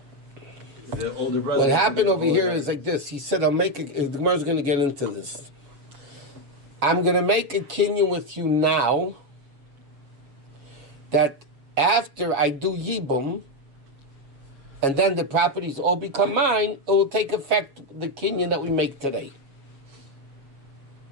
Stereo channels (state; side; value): late; left; 7.2 ms